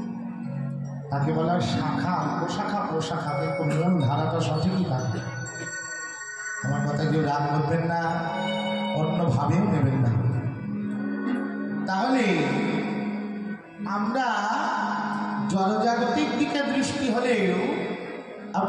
তাকে বলা শাখা, প্রশাখা, কিন্তু মূল ধারাটা সঠিকই থাকবে। আমার কথা কেউ রাগ করবেন না, অন্যভাবেও নেবেন না। তাহলে আমরা জনজাগতিক দিকে দৃষ্টি হলেও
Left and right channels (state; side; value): identical; both; correlation 1.00